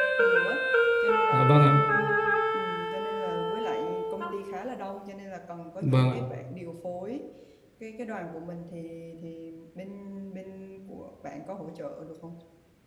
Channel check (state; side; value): identical; both; correlation 1.00